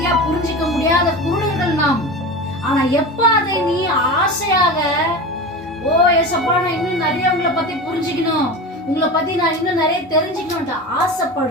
புரிஞ்சிக்க முடியாத குருடர்கள் நாம். ஆனா எப்ப அதை நீ ஆசையாக ஓ ஏசப்பா நான் இன்னும் நிறைய உங்களை பத்தி புரிஞ்சுக்கணும், உங்களை பத்தி நான் இன்னும் நிறைய தெரிஞ்சுக்கணும்ட்டு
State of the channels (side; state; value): both; normal; correlation 0.28